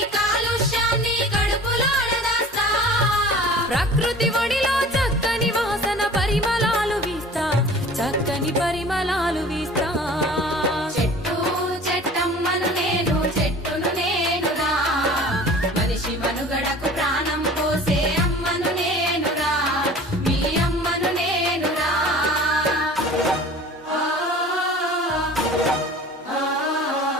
కాలుష్యాన్ని కడుపులోన దాస్తా, ప్రకృతి ఒడిలో చక్కని వాసన పరిమళాలు వీస్తా, చక్కని పరిమళాలు వీస్తా. చెట్టు చెట్టమ్మను నేను చెట్టును నేనురా, మనిషి మనుగడకు ప్రాణం పోసే అమ్మను నేనురా, మీ అమ్మను నేనురా.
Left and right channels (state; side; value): normal; both; correlation 0.44